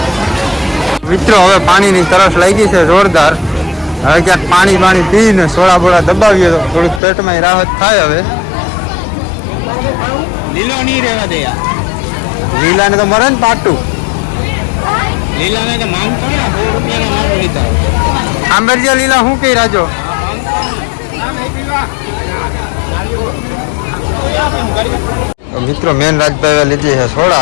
મિત્રો હવે પાણીની તરસ લાગી છે જોરદાર. હવે ક્યાંક પાણી પીને સોડા બોડા દબાવીએ તો થોડુંક પેટમાં રાહત થાય. હવે લીલો નહીં રહેવા દે યાર. લીલાને તો મરે ને પાટું. લીલાને તો માંગતો ને 100 રૂપિયાના માંગ લીધા. આંબેરજા લીલા શું કહી રાજો? મિત્રો મેન રાજભાઈ લીધી છે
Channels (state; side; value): drops out; right; at 7.0 s